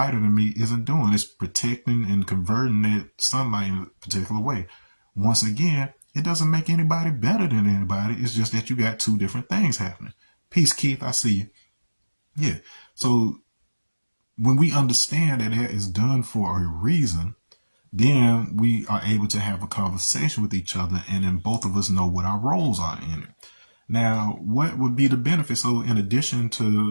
than me isn't doing. It's protecting and converting that sunlight in a particular way. Once again, it doesn't make anybody better than anybody. It's just that you got two different things happening. Peace, Keith. I see you. Yeah. So when we understand that that is done for a reason, then we are able to have a conversation with each other, and then both of us know what our roles are in it. Now, what would be the benefit? So in addition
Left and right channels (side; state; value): both; inverted; correlation -1.00